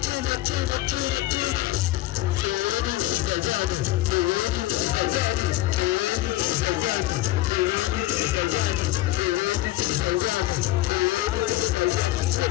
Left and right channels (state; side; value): quieter; right; 16.7 dB